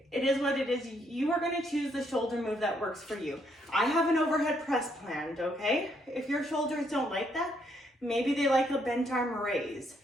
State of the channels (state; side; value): normal; both; correlation 0.72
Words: It is what it is. You are gonna choose the shoulder move that works for you. I have an overhead press planned, okay? If your shoulders don't like that, maybe they like a bent arm raise.